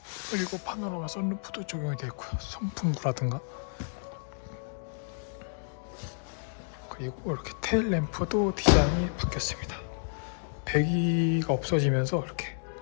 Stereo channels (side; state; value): right; silent; digital silence